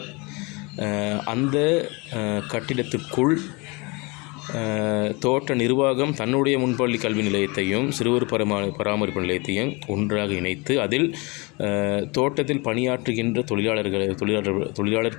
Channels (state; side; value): quieter; right; 27.6 dB